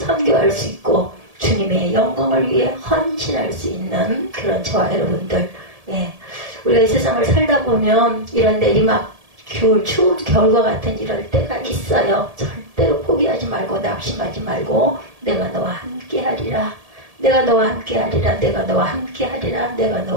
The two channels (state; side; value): late; left; 1.7 ms